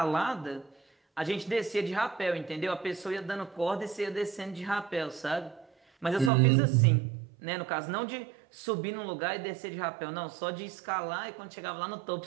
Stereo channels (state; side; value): drops out; left; at 6.3 s